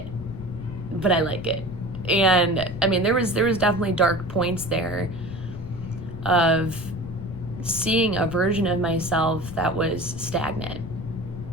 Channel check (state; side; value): noise; left; rumble, 11 dB below the sound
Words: But I like it. And I mean, there was definitely dark points there of seeing a version of myself that was stagnant,